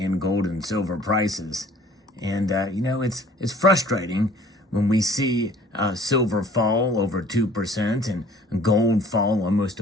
gold and silver prices. And, it's frustrating when we see silver fall over 2% and gold fall almost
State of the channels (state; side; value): normal; both; correlation 0.53